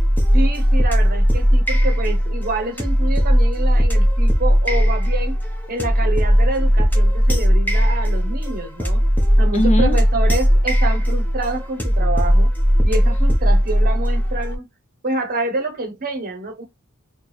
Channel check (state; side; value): normal; both; correlation 0.89